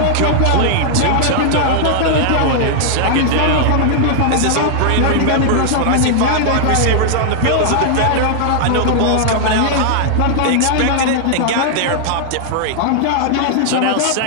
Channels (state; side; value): different; both; correlation -0.01